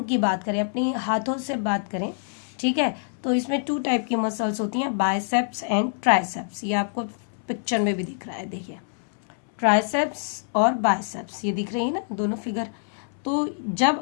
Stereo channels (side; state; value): right; silent; 61 dB below the other